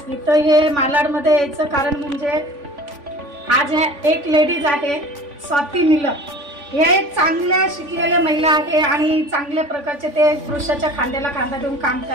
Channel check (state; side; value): late; left; 3.5 ms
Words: इथं हे मालाडमध्ये यायचं कारण म्हणजे आज एक लेडीज आहे स्वाती निलम। हे एक चांगल्या शिकलेल्या महिला आहे आणि चांगल्या प्रकारचे ते पुरुषाच्या खांद्याला खांदा देऊन काम